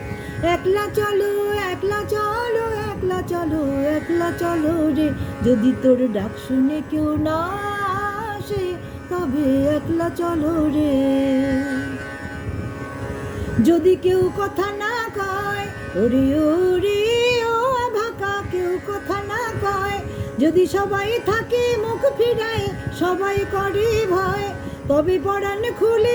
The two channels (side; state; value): both; identical; correlation 1.00